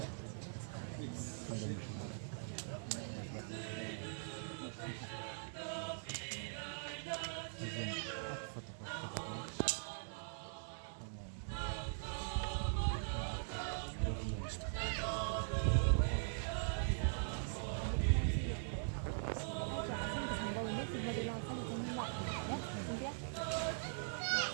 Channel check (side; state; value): left; silent; digital silence